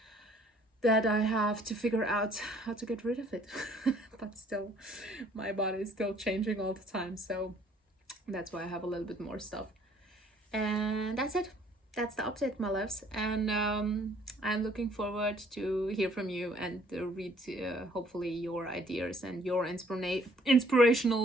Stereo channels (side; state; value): both; normal; correlation 0.60